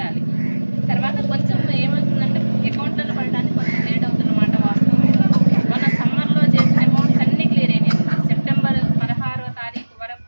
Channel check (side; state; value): both; inverted; correlation -1.00